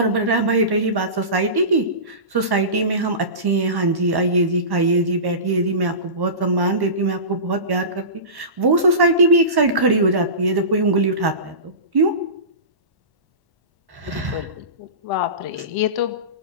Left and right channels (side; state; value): left; late; 1.1 ms